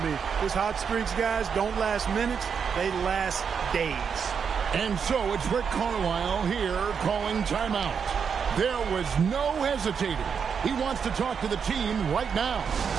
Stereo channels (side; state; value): left; quieter; 6.7 dB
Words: mean, his hot streaks, guys, don't last minutes. They last days. And so it's Rick Carlisle here calling timeout. There was no hesitating. He wants to talk to the team right now.